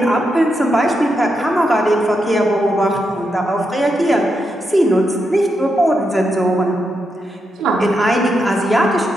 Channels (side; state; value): both; normal; correlation 0.84